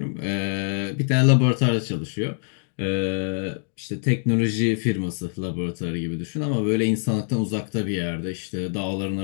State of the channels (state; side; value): silent; right; digital silence